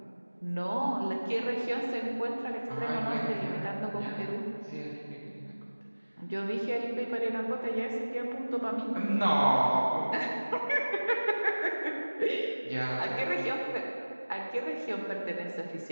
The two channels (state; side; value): inverted; both; correlation -1.00